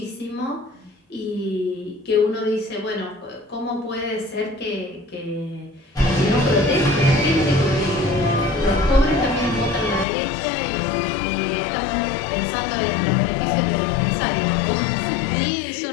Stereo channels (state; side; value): drops out; right; at 10.1 s